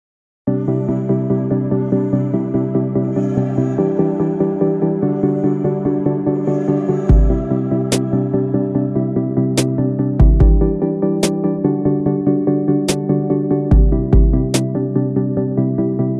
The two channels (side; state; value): both; identical; correlation 1.00